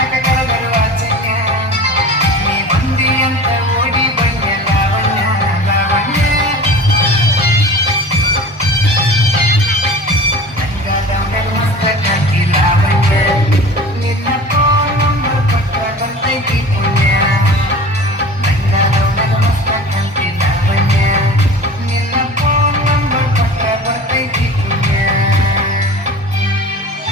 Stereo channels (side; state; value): both; normal; correlation 0.38